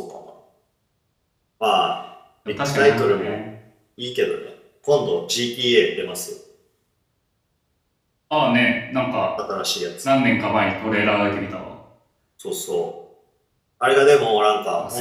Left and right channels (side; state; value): both; identical; correlation 1.00